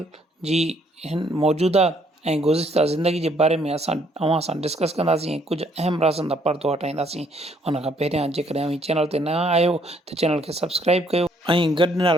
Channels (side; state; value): both; normal; correlation 0.66